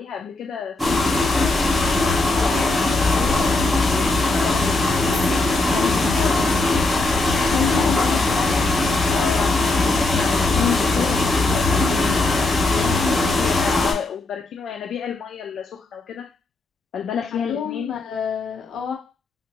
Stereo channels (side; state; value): right; quieter; 3.0 dB